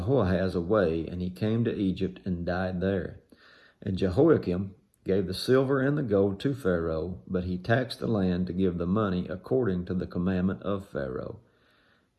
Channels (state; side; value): identical; both; correlation 1.00